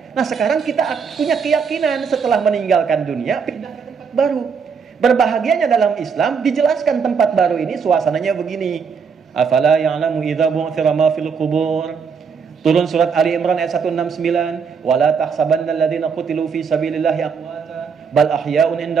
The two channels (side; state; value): left; quieter; 6.0 dB